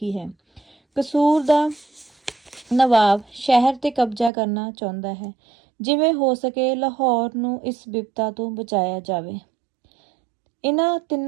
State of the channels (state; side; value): drops out; left; at 4.3 s